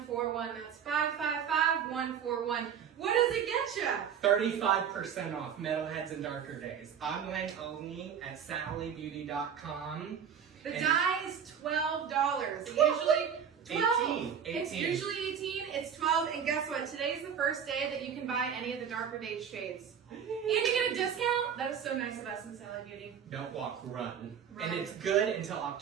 That's 555-141. What does it get you? 35% off Metalheads and Darker Days. Online only at sallybeauty.com. The dye is $12. It usually 12. 18. It's usually 18. It's 12. And guess what? Today's the first day that you can buy any of the Darker Days shades. And you get a discount. That is so nice of us in Sally Beauty. Don't walk, run. Run. And it's good until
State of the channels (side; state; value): left; quieter; 7.9 dB